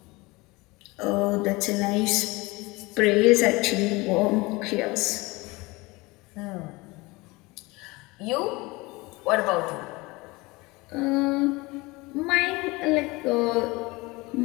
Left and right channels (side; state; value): right; quieter; 23.4 dB